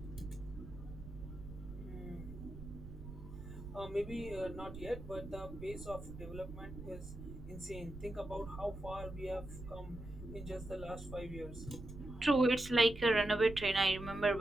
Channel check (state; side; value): noise; right; rumble, 12 dB below the sound